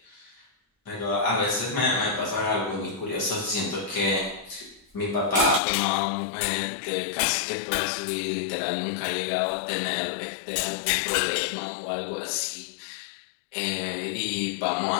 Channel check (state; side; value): drops out; right; at 5.6 s